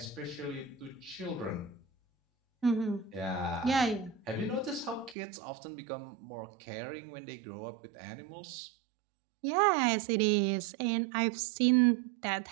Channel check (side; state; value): left; drops out; at 5.2 s